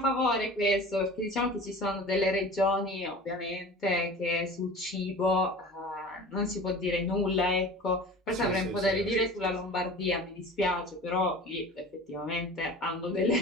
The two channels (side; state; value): both; normal; correlation 0.39